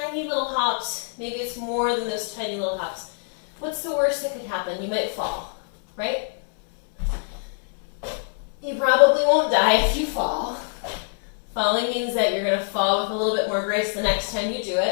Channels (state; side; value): silent; right; 62 dB below the other